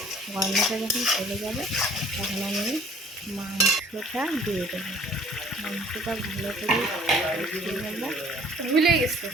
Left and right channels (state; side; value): normal; both; correlation 0.54